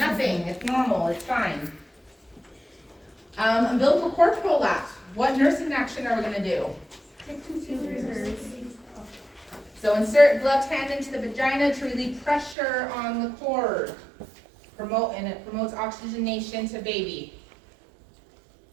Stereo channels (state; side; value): drops out; left; at 12.6 s